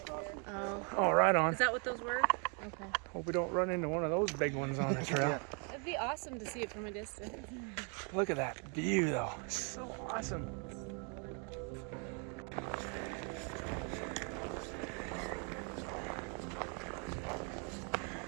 Oh, right on. Is that what those were? Okay. Hope we don't run into one of those big ones on the trail. It'd be awesome to see it from a distance. Look at that view, though. So awesome.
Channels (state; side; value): quieter; left; 37.6 dB